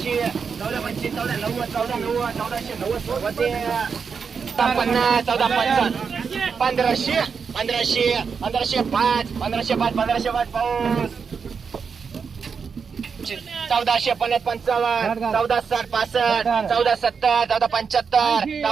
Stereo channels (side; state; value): left; quieter; 5.9 dB